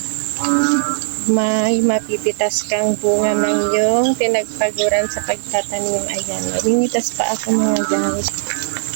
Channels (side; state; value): left; silent; digital silence